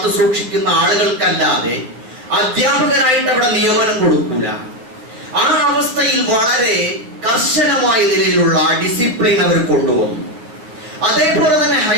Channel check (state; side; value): late; left; 9.3 ms